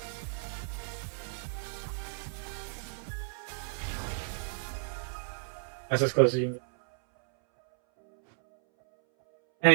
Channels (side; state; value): left; silent; 56 dB below the other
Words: That's as close as you can get. And